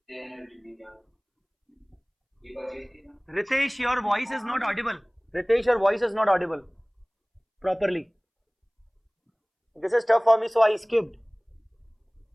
Ritesh, your voice is not audible. Ritesh, your voice is not audible properly. This is tough for me, so I skipped.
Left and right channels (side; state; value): both; identical; correlation 1.00